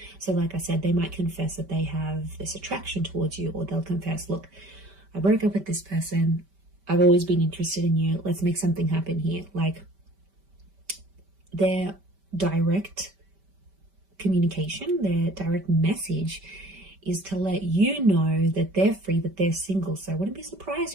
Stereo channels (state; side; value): late; left; 5.1 ms